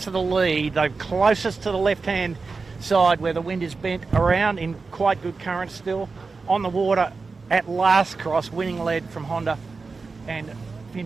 to the lead. They're closest to the left-hand side where the wind is bent around in quite good current still. On the water at last cross, winning lead from Honda, and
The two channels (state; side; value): quieter; left; 4.3 dB